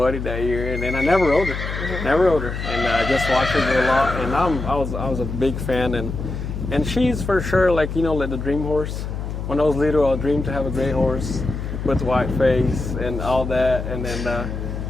that year, and then I never rode her, and I just watched her go a lot. And I was a big fan, and she's for sure like like the dream horse. When I was little, I dreamed to have a great horse with white face and all that, and then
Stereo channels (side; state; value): left; noise; hum, 5 dB below the sound